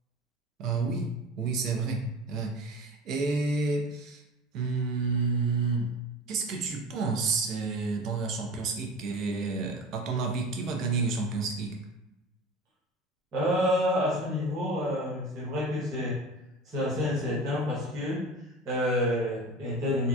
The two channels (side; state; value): both; normal; correlation 0.35